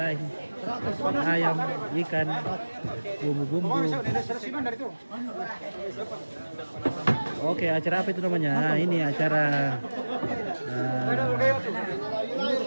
Ayam, ikan, bumbu-bumbu. Oke, acara apa itu namanya? Nah, ini acara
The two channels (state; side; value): inverted; both; correlation -1.00